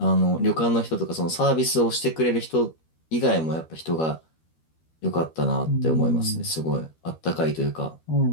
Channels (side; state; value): right; late; 13 ms